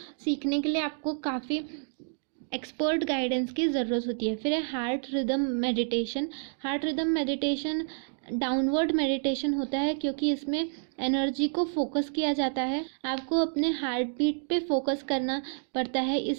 सीखने के लिए आपको काफ़ी एक्सपर्ट गाइडेंस की ज़रूरत होती है। फिर है heart rhythm meditation. Heart rhythm meditation downward meditation होता है, क्योंकि इसमें एनर्जी को फोकस किया जाता है। आपको अपने हार्ट बीट पे फोकस करना पड़ता है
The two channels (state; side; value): silent; left; digital silence